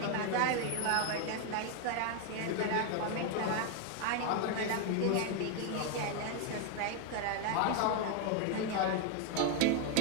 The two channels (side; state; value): both; different; correlation 0.01